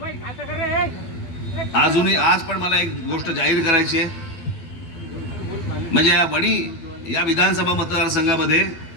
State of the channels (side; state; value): right; late; 12 ms